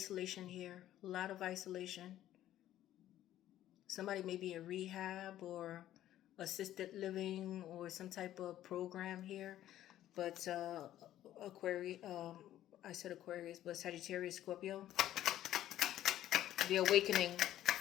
here. A lot of isolation. Somebody may be in rehab or assisted living or some type of program here. But Aquarius, I said Aquarius, but Sagittarius, Scorpio. The awakening,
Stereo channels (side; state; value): right; quieter; 12.8 dB